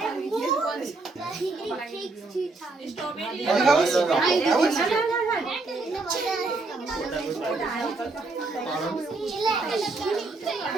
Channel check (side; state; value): left; quieter; 3.5 dB